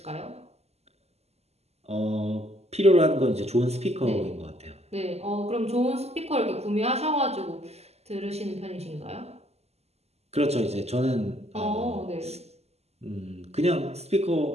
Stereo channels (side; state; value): left; late; 0.30 ms